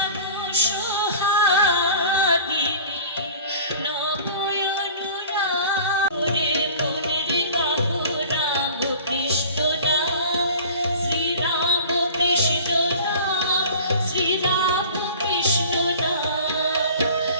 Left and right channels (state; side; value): inverted; both; correlation -0.42